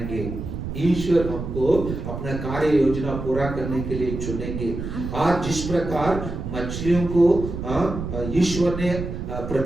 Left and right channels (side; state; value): right; noise; rumble, 6 dB below the sound